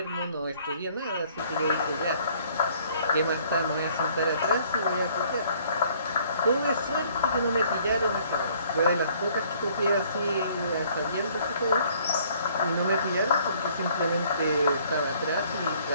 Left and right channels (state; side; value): inverted; both; correlation -0.60